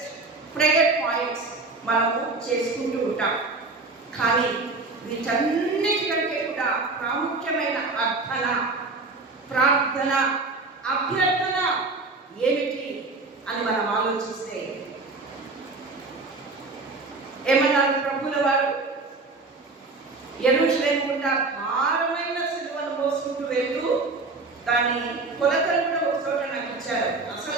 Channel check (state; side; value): quieter; left; 3.6 dB